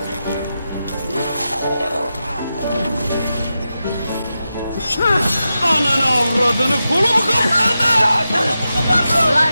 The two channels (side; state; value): both; inverted; correlation -0.90